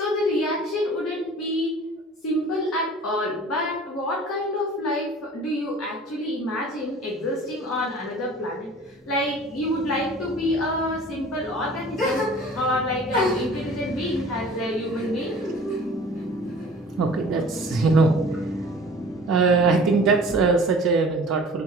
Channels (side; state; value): both; normal; correlation 0.45